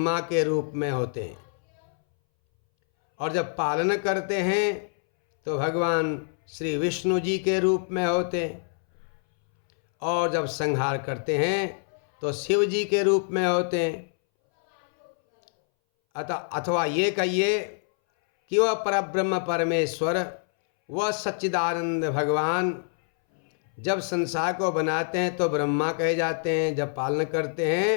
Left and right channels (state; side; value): silent; right; 61 dB below the other